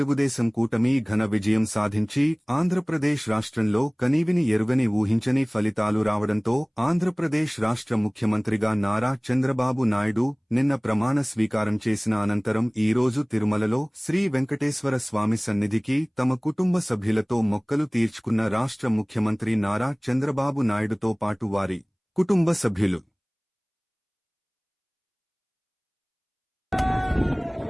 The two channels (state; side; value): identical; both; correlation 1.00